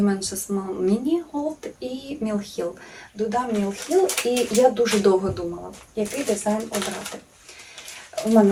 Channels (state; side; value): identical; both; correlation 1.00